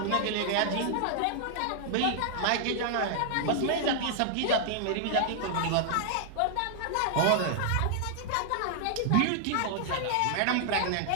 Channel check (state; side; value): different; both; correlation -0.01